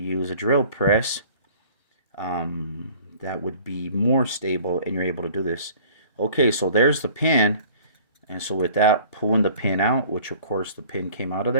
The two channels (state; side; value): inverted; both; correlation -0.50